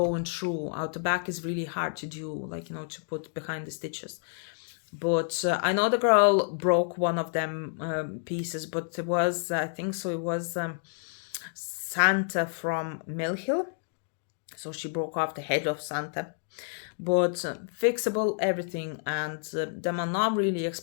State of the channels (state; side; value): silent; right; 58 dB below the other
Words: through. Out the back is really hard to do, like, you know, to put behind the stitches. But I know the girl broke one of them pieces, but it was, I think so, it was Santa from Mill Hill. So she broke off the head of Santa. But fixable everything, and them are not really